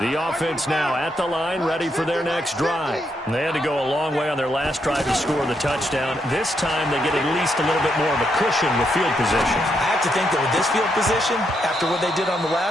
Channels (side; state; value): both; normal; correlation 0.79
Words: offense now at the line, ready for their next drive. They had to go a long way on their last drive to score the touchdown. This time they get at least a little bit more of a cushion with field position. I have to think that with this field position, after what they did on the